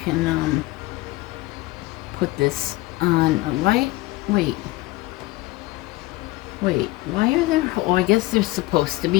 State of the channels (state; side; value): quieter; right; 20.0 dB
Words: can put this on. Why are there, oh, I guess there's supposed to